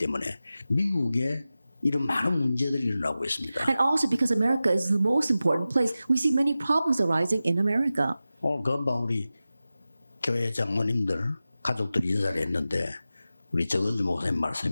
미국에 이런 많은 문제들이 일어나고 있습니다. And also because America is the most important place, we see many problems arising in America. 오늘 금방 우리 교회 장로님들 가족들 인사를 했는데 우리 정은주 목사님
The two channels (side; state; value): both; inverted; correlation -0.94